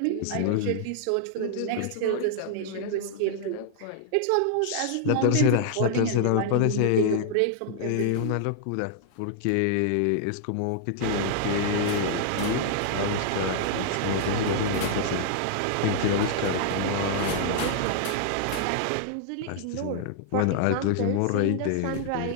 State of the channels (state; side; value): different; both; correlation -0.01